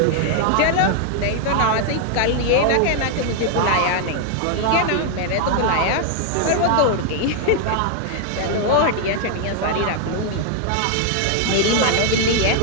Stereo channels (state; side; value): different; both; correlation 0.00